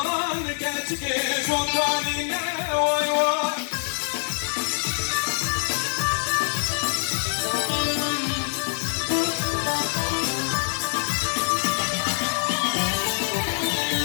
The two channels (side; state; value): right; silent; digital silence